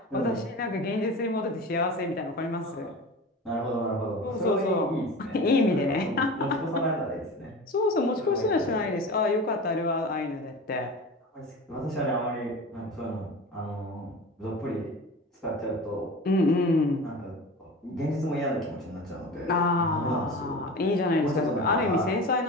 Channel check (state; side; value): normal; both; correlation 0.33